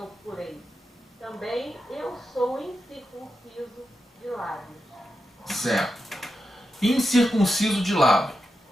procurei, também eu sou incircunciso de lábios. Certo. Incircunciso de lábio.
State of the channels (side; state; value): both; normal; correlation 0.89